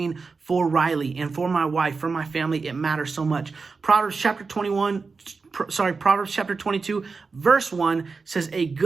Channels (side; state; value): left; quieter; 4.5 dB